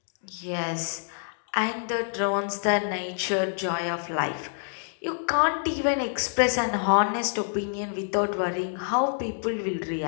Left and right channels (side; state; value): right; silent; digital silence